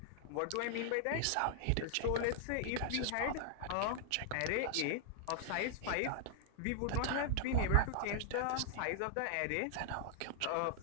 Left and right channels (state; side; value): different; both; correlation 0.00